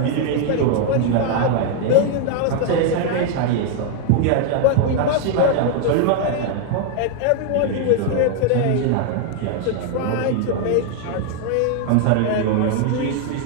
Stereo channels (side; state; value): both; different; correlation 0.00